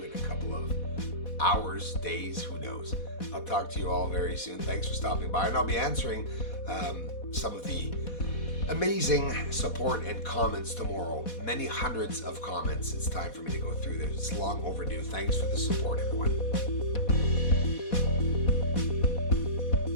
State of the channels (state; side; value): late; right; 4.1 ms